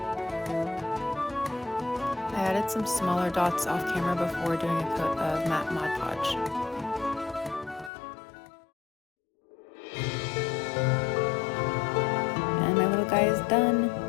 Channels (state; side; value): drops out; right; at 7.9 s